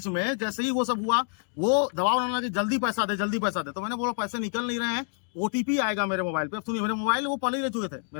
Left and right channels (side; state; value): right; silent; 60 dB below the other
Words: में, जैसे ही वो सब हुआ, वो दबाव डालना कि जल्दी पैसा दे, जल्दी पैसा दे, तो मैंने बोला पैसे निकल नहीं रहे हैं, OTP आएगा मेरे मोबाइल पे। अब सुनिए, मेरे मोबाइल वो पहले ही ले चुके थे,